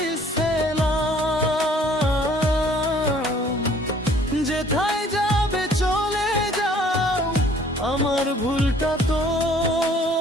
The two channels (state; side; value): normal; both; correlation 0.57